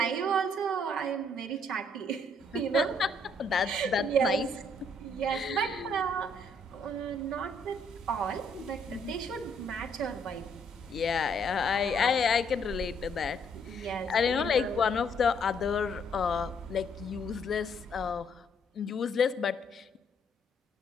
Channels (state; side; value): normal; both; correlation 0.68